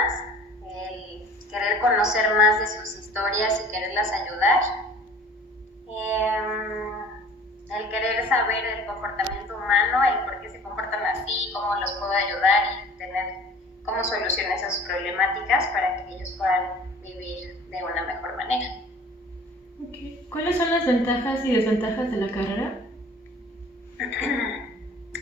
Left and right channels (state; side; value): normal; both; correlation 0.47